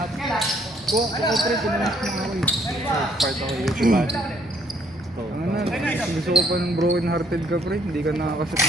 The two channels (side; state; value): both; normal; correlation 0.66